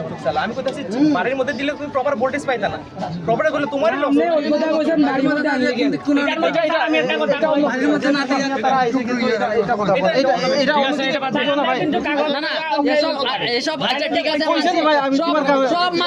চালা। আমি কইতাছি বাড়ির মধ্যে দিলে তুমি প্রপার ভোল্টেজ পাইতা না, প্রপার করলে তোমারই লস। আপনি ওই কথা কইছেন বাড়ির মধ্যে আনলে কিন্তু কোন এটার মধ্যে আমি একটা কথা বলি, বাড়ির মধ্যে না দিয়ে তারা আইছে কিন্তু এটা কথা বলে এটা কিন্তু কাগজ না না এসব আচ্ছা ঠিক আছে কইছেন ভাই, আমি তোমার সব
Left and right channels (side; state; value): both; identical; correlation 1.00